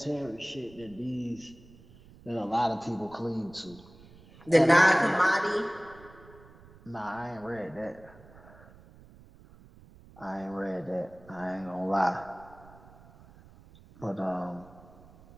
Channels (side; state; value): right; noise; rumble, 23 dB below the sound